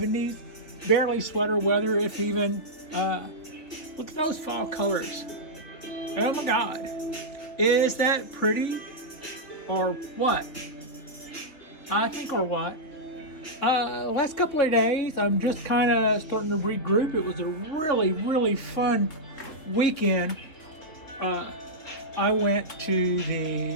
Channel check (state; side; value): late; right; 3.2 ms